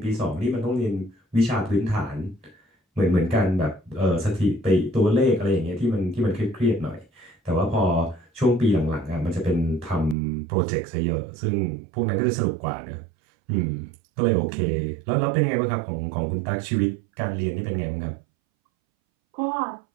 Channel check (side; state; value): left; drops out; at 10.2 s